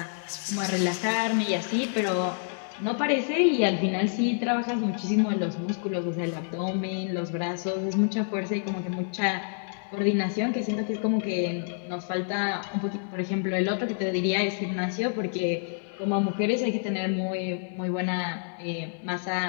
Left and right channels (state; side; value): silent; right; digital silence